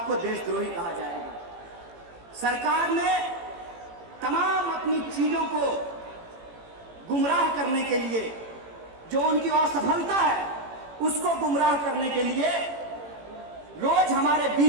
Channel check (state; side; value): late; left; 18 ms